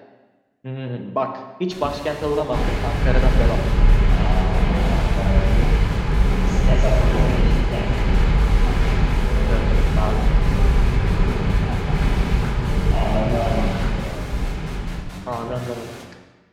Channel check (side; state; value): both; identical; correlation 1.00